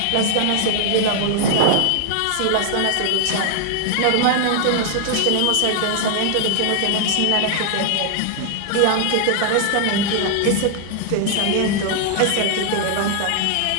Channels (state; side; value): different; both; correlation 0.00